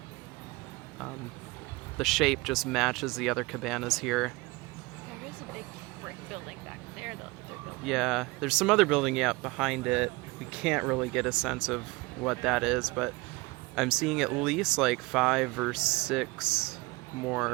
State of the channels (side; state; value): left; quieter; 23.2 dB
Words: the shape just matches the other cabanas here. There is a big brick building back there, though. Yeah, there's some other building behind it. We can't really get a sense of what that is, but I'm seeing at least like 5 or 6